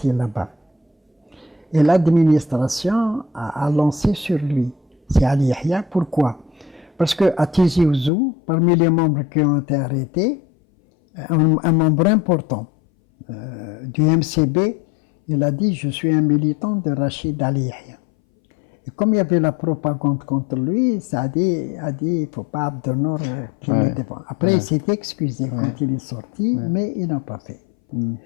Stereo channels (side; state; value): right; drops out; at 8.1 s